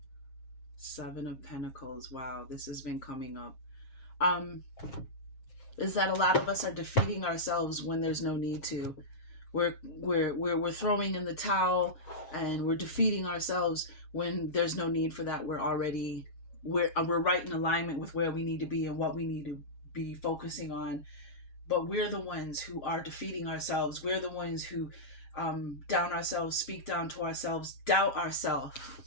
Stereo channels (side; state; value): right; late; 7.4 ms